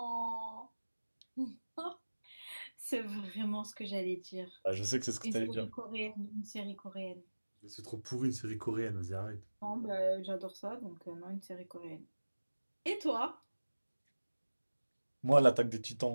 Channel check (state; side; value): inverted; both; correlation -1.00